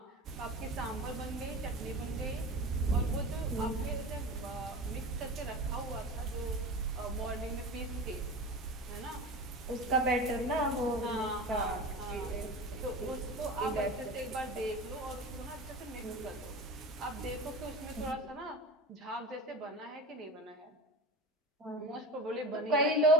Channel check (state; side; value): normal; both; correlation 0.31